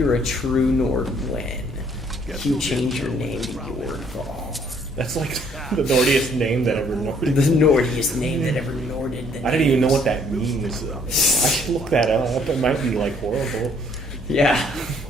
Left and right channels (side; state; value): both; normal; correlation 0.63